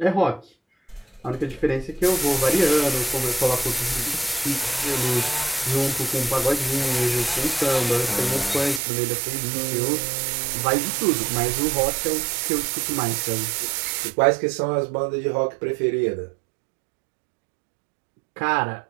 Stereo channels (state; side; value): drops out; left; at 8.8 s